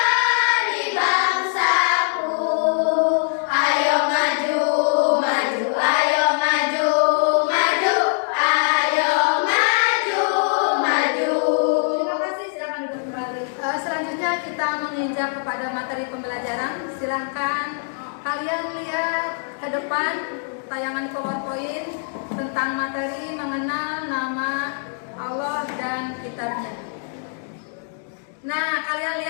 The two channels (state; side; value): silent; right; digital silence